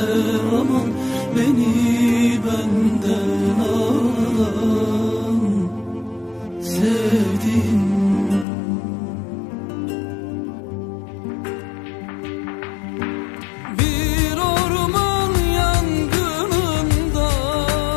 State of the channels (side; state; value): right; drops out; at 8.5 s